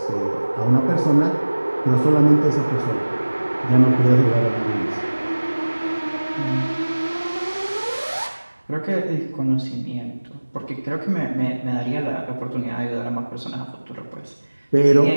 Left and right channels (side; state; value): both; inverted; correlation -1.00